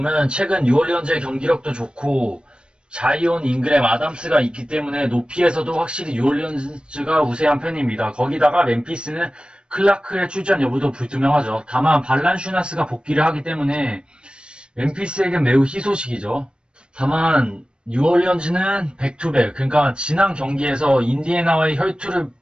최근 뉴올리언즈의 경기력도 좋고 자이온, 잉그램, 아담스가 있기 때문에 높이에서도 확실히 뉴올리언즈가 우세한 편입니다. 거기다가 멤피스는 클라크의 출전 여부도 불투명하죠. 다만 발란슈나스가 복귀를 하기 때문에 멤피스에겐 매우 희소식이죠. 다만 뉴올리언즈는 백투백, 그러니까 지난 경기에서 인디애나와의 혈투를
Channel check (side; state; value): left; late; 0.055 ms